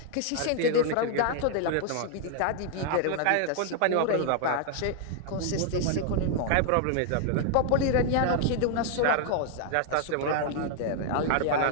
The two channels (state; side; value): different; both; correlation 0.00